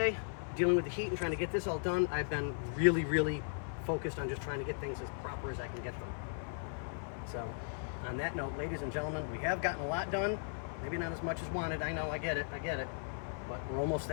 Dealing with the heat and trying to get this all done. I've been really, really focused on just trying to get things as proper as I can get them. So, on that note, ladies and gentlemen, we have gotten a lot done. Maybe not as much as wanted. I know, I get it. But we're almost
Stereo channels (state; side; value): silent; right; 53 dB below the other